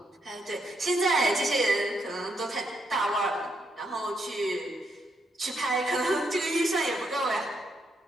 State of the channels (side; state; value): both; normal; correlation 0.78